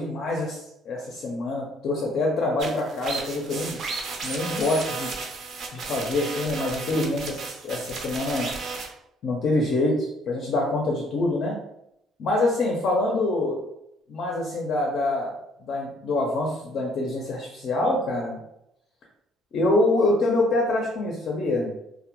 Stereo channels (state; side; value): normal; both; correlation 0.62